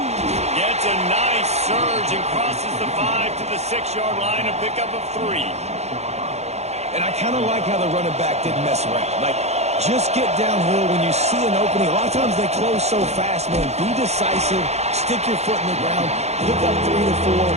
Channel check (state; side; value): late; left; 0.32 ms